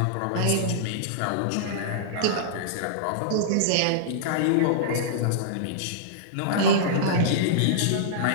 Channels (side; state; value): both; different; correlation -0.02